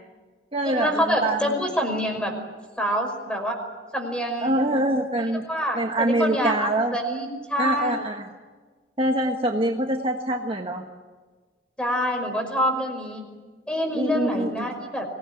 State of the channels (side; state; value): both; normal; correlation 0.43